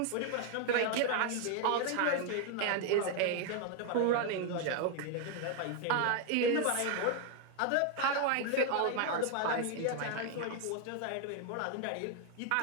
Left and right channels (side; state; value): both; different; correlation 0.01